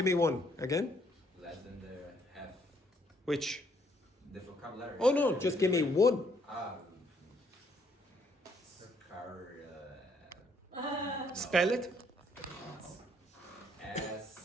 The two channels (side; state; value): both; normal; correlation 0.68